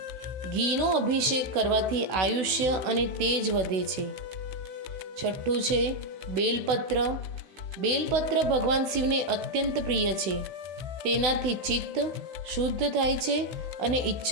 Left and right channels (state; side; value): late; left; 16 ms